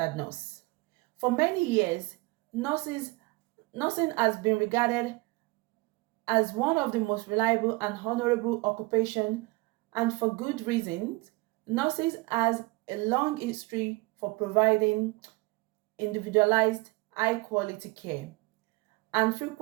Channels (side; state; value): left; quieter; 24.0 dB